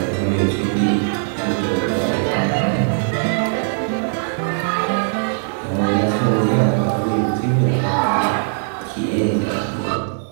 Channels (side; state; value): left; silent; 61 dB below the other